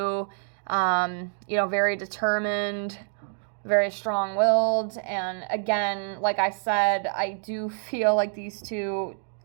You know, very determined, very strong-willed. And again, like I said, I do feel like these two,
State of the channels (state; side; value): silent; left; 59 dB below the other